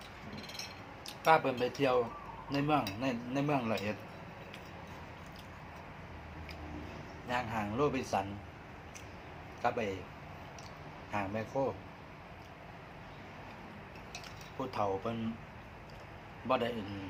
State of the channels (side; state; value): both; identical; correlation 1.00